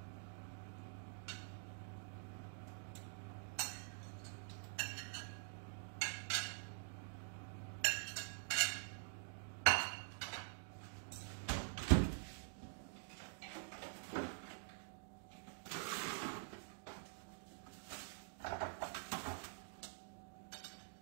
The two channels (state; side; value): silent; left; digital silence